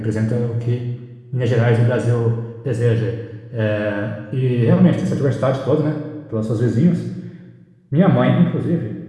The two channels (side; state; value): both; identical; correlation 1.00